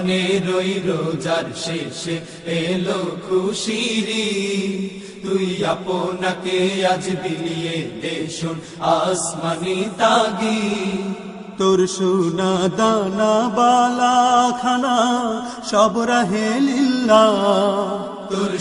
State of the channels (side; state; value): both; identical; correlation 1.00